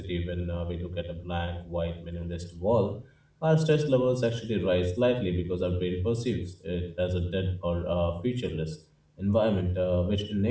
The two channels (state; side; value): identical; both; correlation 1.00